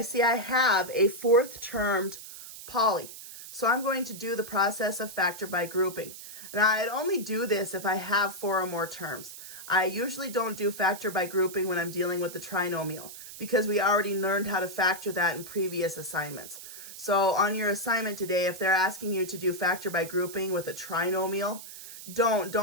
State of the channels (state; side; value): noise; right; hiss, 13 dB below the sound